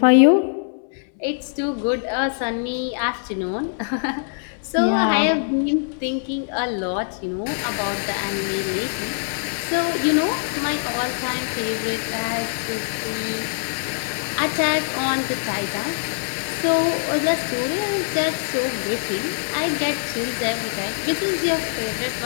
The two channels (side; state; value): right; silent; 63 dB below the other